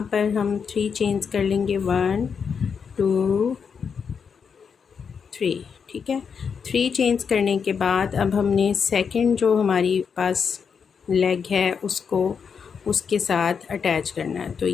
पर हम 3 चेन्स कर लेंगे, 1 2 3। ठीक है। 3 चेन्स करने के बाद अब हमने सेकंड जो हमारी पास लेग है उसको उसके साथ अटैच करना है। तो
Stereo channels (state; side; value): quieter; right; 6.4 dB